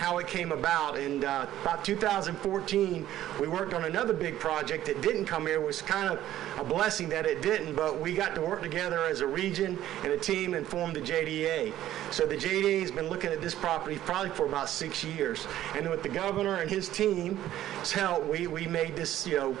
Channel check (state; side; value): quieter; left; 13.0 dB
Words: it came about. And about 2014, we worked on another big project that didn't come here. It was kind of a blessing that it didn't, but we got to work together as a region and a team and formed the JDA. So the JDA has been looking at this property probably for about 6 years. And with the governor and his team's help, we made this,